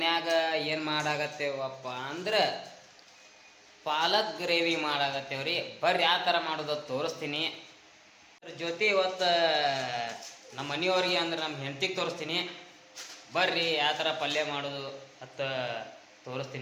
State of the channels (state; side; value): identical; both; correlation 1.00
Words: ಏನು ಮಾಡಾಕತ್ತೇವಪ್ಪ ಅಂದ್ರೆ ಪಾಲಕ್ ಗ್ರೇವಿ ಮಾಡಾಕತ್ತೇವ್ರಿ. ಬರ್ರಿ ಯಾವ ಥರ ಮಾಡೋದು ತೋರಿಸ್ತೀನಿ. ಅದ್ರ ಜೊತೆ ಇವತ್ತು ನಮ್ಮ ಮನೆಯವ್ರಿಗೆ ಅಂದ್ರೆ ನಮ್ಮ ಹೆಂಡತಿಗೆ ತೋರಿಸ್ತೀನಿ. ಬರ್ರಿ ಯಾವ ಥರ ಪಲ್ಯ ಮಾಡೋದು ಅಂತ